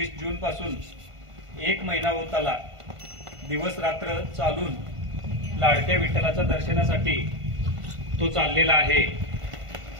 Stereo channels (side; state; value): left; late; 1.5 ms